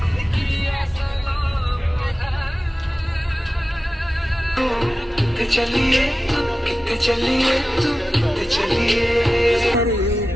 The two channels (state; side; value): normal; both; correlation 0.94